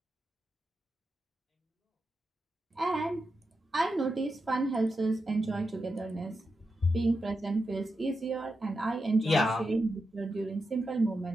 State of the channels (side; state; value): both; normal; correlation 0.88